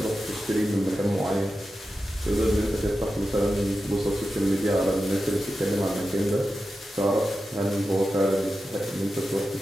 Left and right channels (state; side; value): normal; both; correlation 0.91